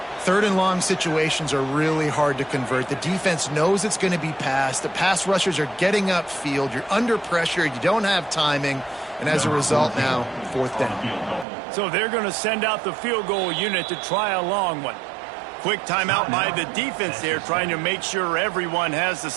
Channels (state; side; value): drops out; left; at 11.5 s